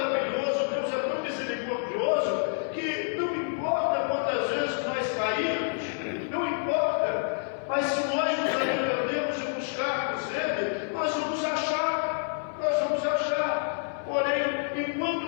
Deus é tão misericordioso, que não importa quantas vezes nós caímos, não importa, mas se nós nos arrependemos e buscarmos Ele, nós vamos achar. Porém, enquanto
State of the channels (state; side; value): silent; right; digital silence